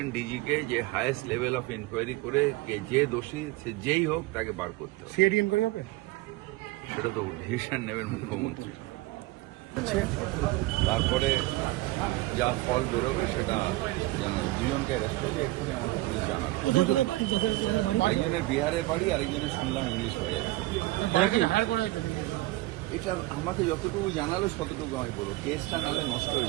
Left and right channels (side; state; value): left; quieter; 19.1 dB